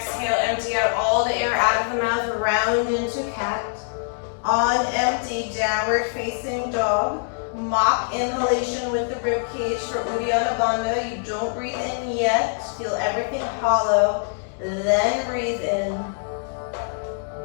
empty out all the air out of the mouth, round into cat. On empty, downward facing dog. Mock inhalation with the rib cage for Uddiyana Bandha. You don't breathe in yet. Feel everything hollow. Then breathe in.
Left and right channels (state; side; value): silent; right; digital silence